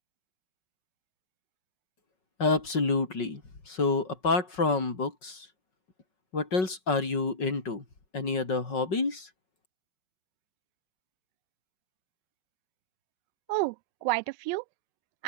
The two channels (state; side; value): late; right; 5.4 ms